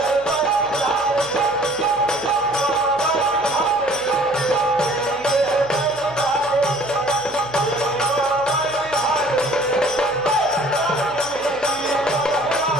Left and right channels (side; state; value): left; noise; hum, 24 dB below the sound